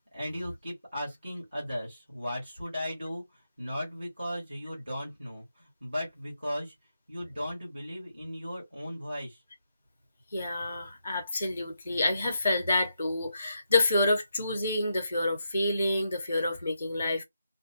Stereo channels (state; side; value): inverted; both; correlation -0.83